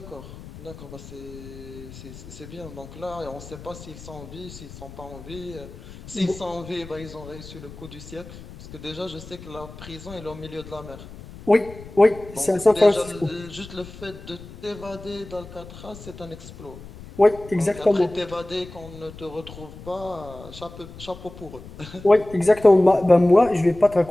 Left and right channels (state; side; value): noise; left; rumble, 16 dB below the sound